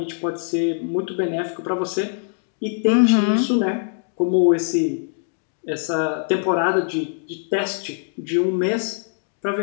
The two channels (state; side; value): silent; right; digital silence